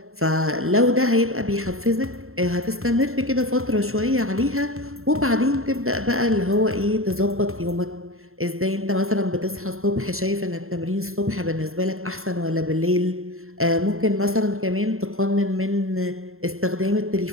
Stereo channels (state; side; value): late; left; 0.62 ms